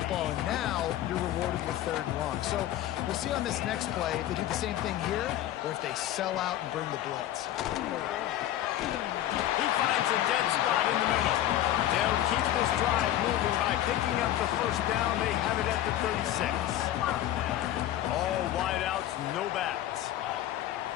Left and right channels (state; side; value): quieter; right; 12.9 dB